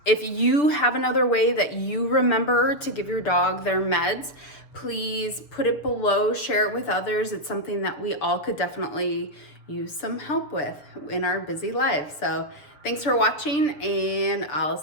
If you have another way that you remember to give your dog their meds, please put it below, share it with others. It's something that we all could definitely use some help with in our busy lives. So thanks for watching, and I'll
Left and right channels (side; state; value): right; late; 6.7 ms